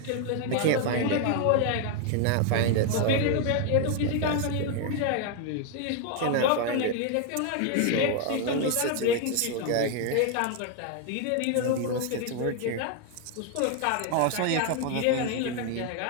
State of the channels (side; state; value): both; different; correlation 0.01